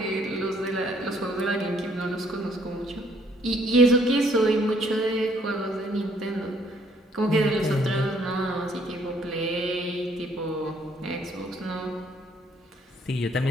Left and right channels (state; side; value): normal; both; correlation 0.65